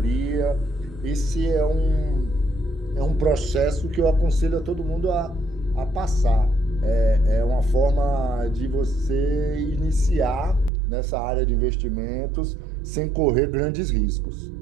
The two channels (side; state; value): left; drops out; at 10.7 s